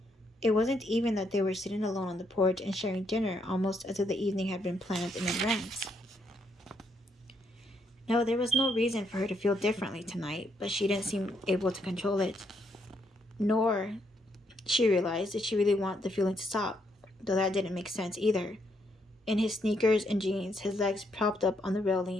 It wasn't even that they were sitting alone on the porch and sharing dinner, almost as if the evening had been planned in advance. No, there was no reason for her to feel differently tonight, but she didn't seem able to control it. Nor, she realized, did she really want the feeling to stop, though that didn't make sense either. In his sneakers and jeans, his legs propped up on the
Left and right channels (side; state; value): both; normal; correlation 0.75